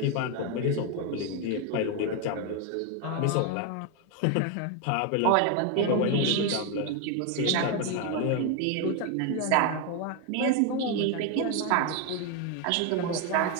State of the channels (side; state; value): both; different; correlation 0.01